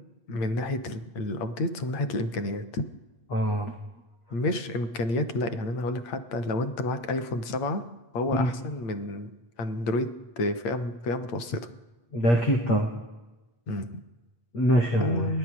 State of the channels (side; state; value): right; late; 8.5 ms